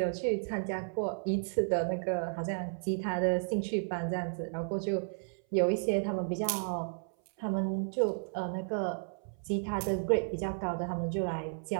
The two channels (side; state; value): left; silent; 56 dB below the other